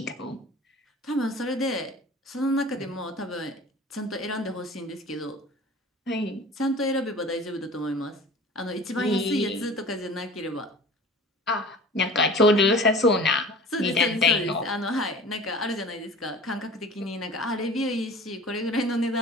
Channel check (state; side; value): normal; both; correlation 0.41